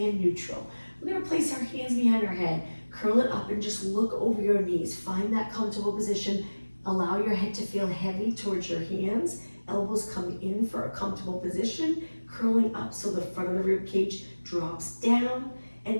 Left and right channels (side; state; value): both; inverted; correlation -1.00